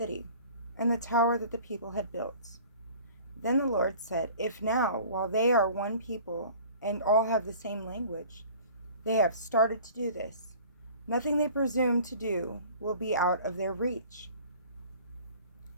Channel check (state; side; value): inverted; both; correlation -0.47